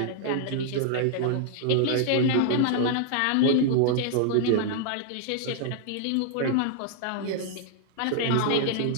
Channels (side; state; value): both; different; correlation 0.00